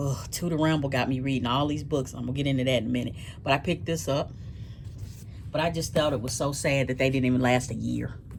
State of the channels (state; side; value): identical; both; correlation 1.00